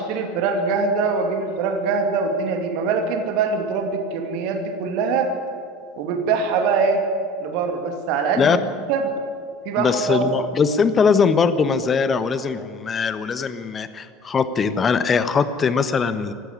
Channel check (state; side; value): normal; both; correlation 0.43